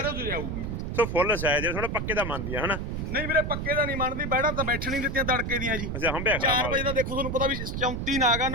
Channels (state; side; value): noise; right; rumble, 3 dB below the sound